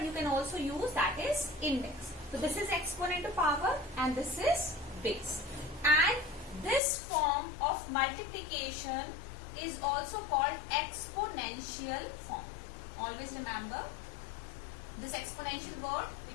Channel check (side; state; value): right; drops out; at 6.8 s